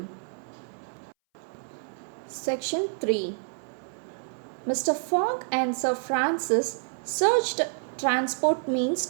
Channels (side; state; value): left; silent; 59 dB below the other